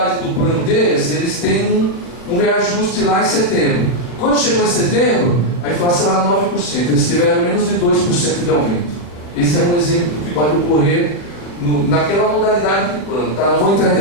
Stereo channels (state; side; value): late; right; 40 ms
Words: do plano deles, eles têm um reajuste lá em setembro. Quando chegou em setembro, a inflação era 9%. Eles tiveram menos de 2% de aumento. Esse é um exemplo que pode ocorrer naquela modalidade do plano. Tá? Não vou entrar em